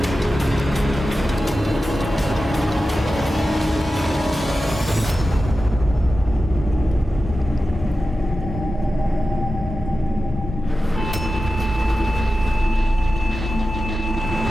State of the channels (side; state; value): both; normal; correlation 0.93